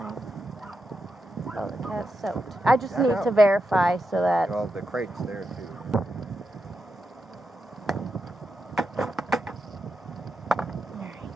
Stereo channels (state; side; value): normal; both; correlation 0.86